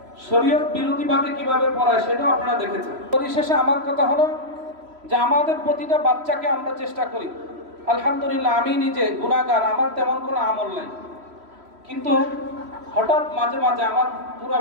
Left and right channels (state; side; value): late; left; 3.1 ms